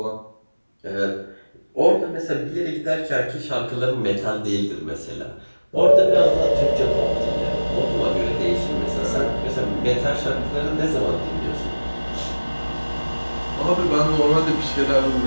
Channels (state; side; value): inverted; both; correlation -1.00